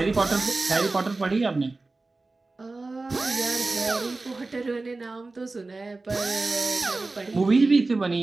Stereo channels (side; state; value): left; quieter; 3.4 dB